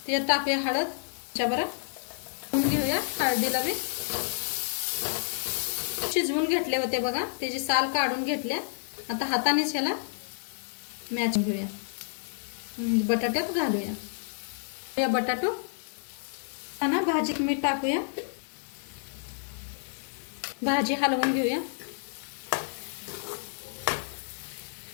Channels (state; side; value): silent; right; digital silence